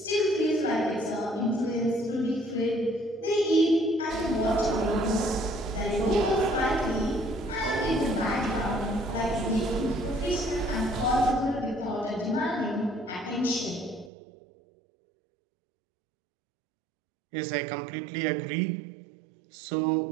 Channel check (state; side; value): drops out; left; at 14.1 s